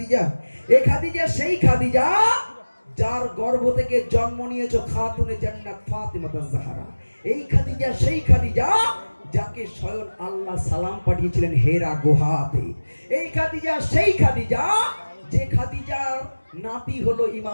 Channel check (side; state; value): both; inverted; correlation -1.00